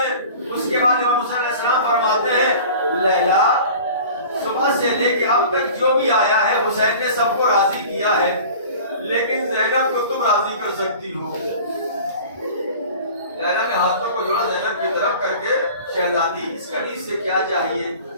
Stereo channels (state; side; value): inverted; both; correlation -0.41